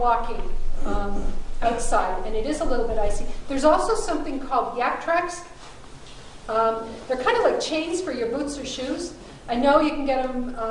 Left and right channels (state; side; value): identical; both; correlation 1.00